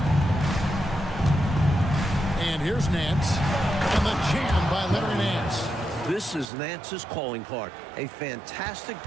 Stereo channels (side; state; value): left; drops out; at 6.5 s